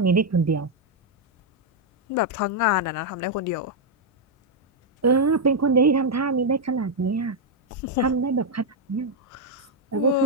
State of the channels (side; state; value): both; normal; correlation -0.01